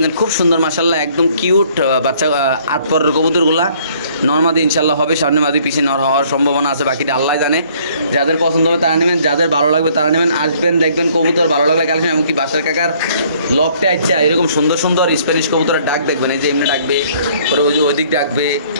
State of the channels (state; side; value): inverted; both; correlation -0.60